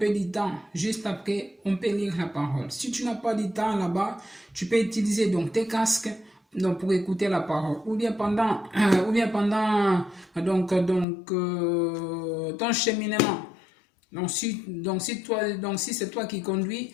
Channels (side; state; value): right; drops out; at 11.1 s